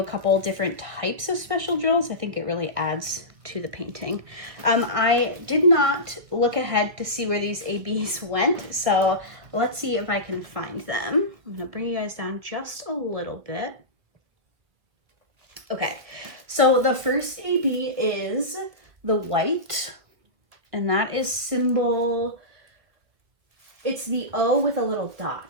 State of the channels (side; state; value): left; late; 1.6 ms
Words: couple different types of special drills. I think it really adds to the painting. I did not look ahead to see where these ABs went, so let's see if I can find them. I'm gonna bring you guys down just a little bit. Okay, so the first AB is the white, and that is symbol, it's the O with a little